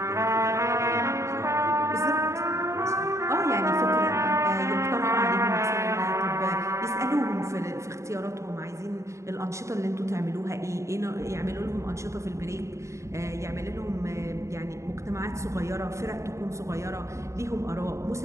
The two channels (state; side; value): late; left; 0.14 ms